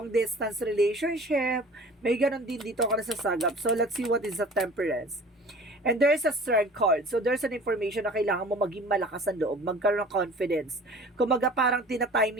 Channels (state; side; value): normal; both; correlation 0.44